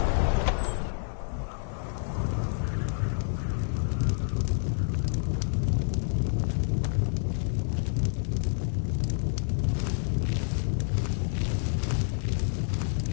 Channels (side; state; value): right; silent; digital silence